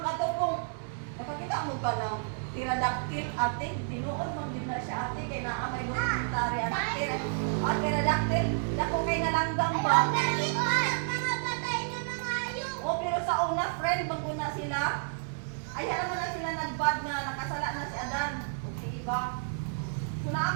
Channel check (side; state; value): left; silent; 57 dB below the other